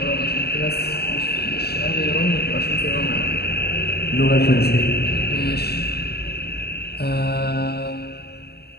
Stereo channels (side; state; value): right; late; 0.47 ms